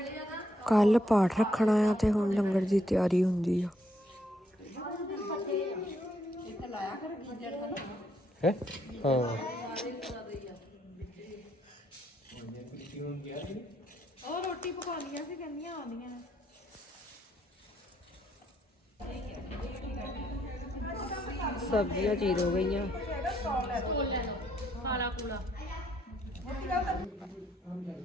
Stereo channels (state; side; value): normal; both; correlation 0.73